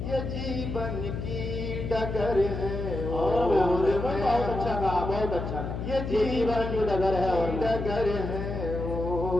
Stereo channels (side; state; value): left; noise; hum, 5 dB below the sound